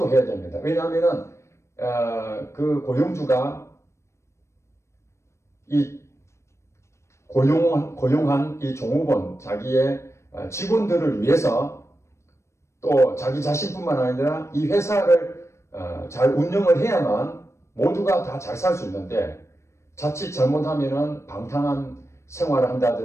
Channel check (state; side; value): late; right; 0.13 ms